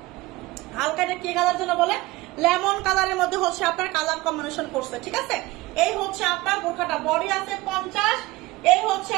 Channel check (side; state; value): left; quieter; 20.2 dB